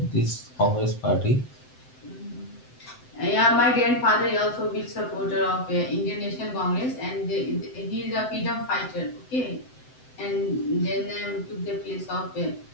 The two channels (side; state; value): right; late; 7.8 ms